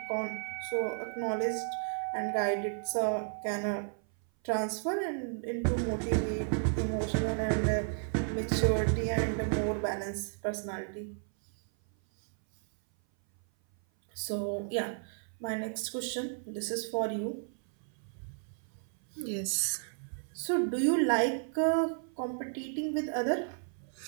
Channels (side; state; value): left; silent; 56 dB below the other